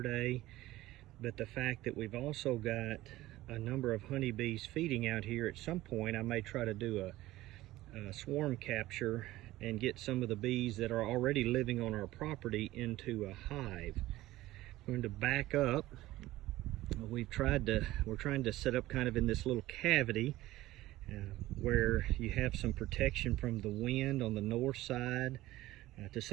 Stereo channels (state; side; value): quieter; left; 16.7 dB